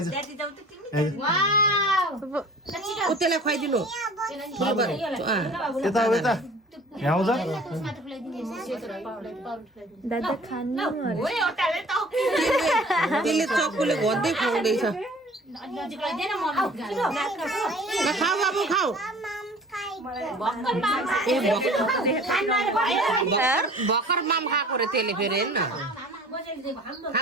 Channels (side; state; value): both; normal; correlation 0.47